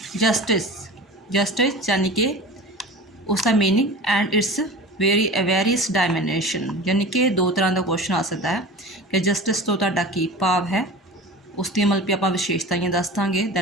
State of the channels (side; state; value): both; normal; correlation 0.35